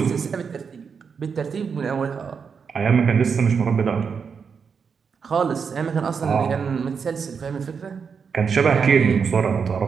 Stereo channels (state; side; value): quieter; left; 6.1 dB